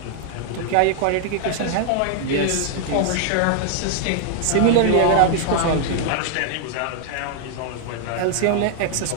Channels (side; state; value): both; different; correlation 0.00